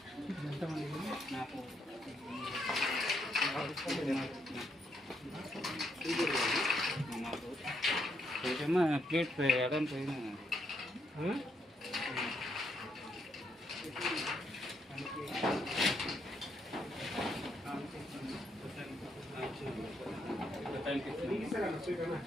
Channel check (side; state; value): both; normal; correlation 0.76